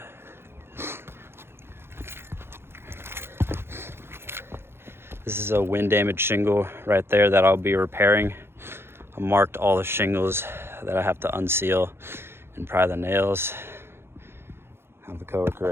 This is a wind damaged shingle right there that I'll be repairing. I marked all the shingles that I have to unseal and pry the nails. I have a coworker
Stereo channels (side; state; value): left; late; 0.11 ms